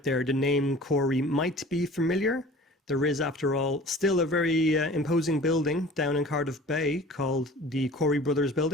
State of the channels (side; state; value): both; normal; correlation 0.44